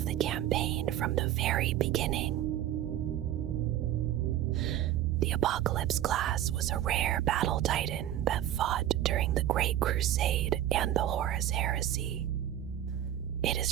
the campaign from the very beginning. The Apocalypse class was a rare battle titan that fought during the Great Crusade and the Horus Heresy. It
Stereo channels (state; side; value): quieter; left; 12.0 dB